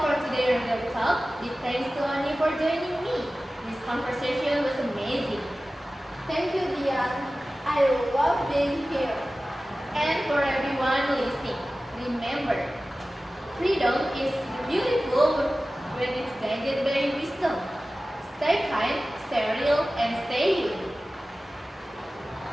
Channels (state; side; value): normal; both; correlation 0.96